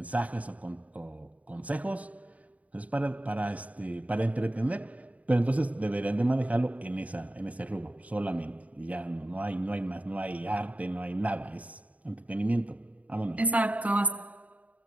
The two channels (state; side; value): late; left; 0.070 ms